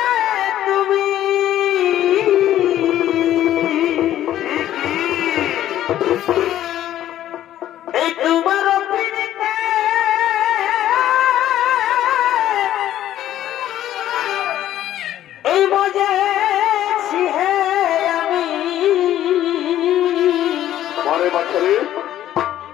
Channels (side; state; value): right; quieter; 12.4 dB